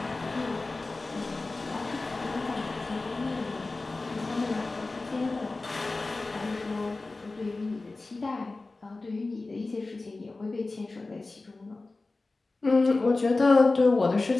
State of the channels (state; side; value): quieter; right; 3.4 dB